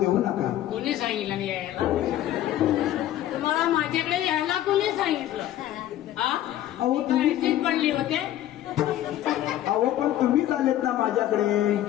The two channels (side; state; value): right; quieter; 12.9 dB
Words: नका. कोणी सांगितलं नाही यायला? तुम्हाला माझ्याकडे यायला कोणी सांगितलं? अहो तुम्ही पडली होते. अहो पण तुम्हीच आलेत ना माझ्याकडे.